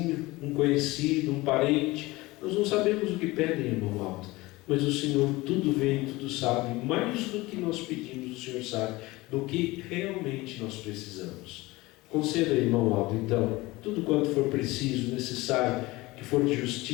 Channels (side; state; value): right; quieter; 20.9 dB